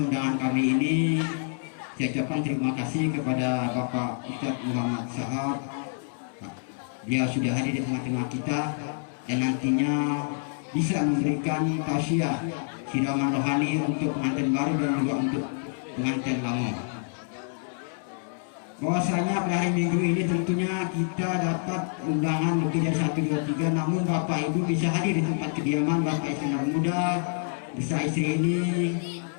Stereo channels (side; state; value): right; silent; 60 dB below the other